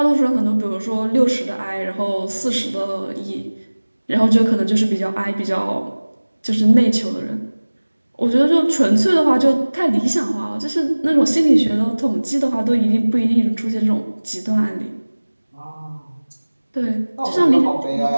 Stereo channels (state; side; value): inverted; both; correlation -1.00